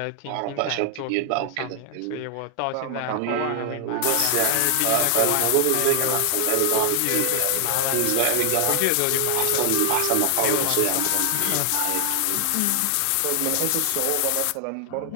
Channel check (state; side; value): different; both; correlation 0.00